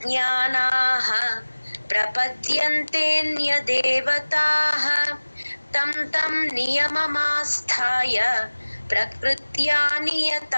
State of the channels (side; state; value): both; inverted; correlation -1.00